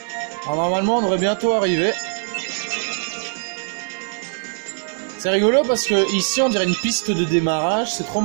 Alors, normalement, on devrait bientôt arriver. C'est rigolo parce que ici on dirait une piste de démarrage, c'est trop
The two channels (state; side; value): silent; left; digital silence